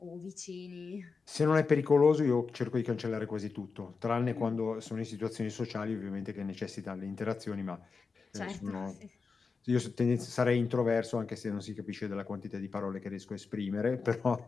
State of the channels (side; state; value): right; quieter; 4.8 dB